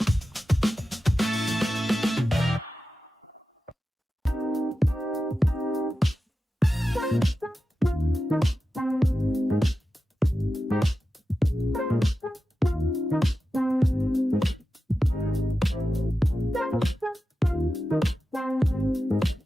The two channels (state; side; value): normal; both; correlation 0.92